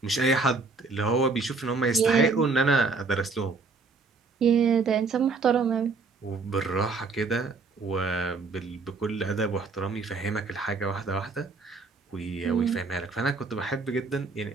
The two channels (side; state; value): left; quieter; 4.2 dB